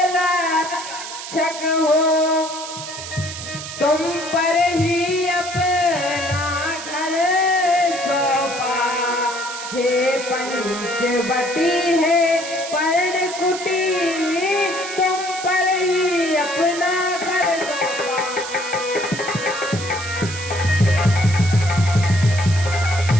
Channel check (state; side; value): noise; right; hiss, 10 dB below the sound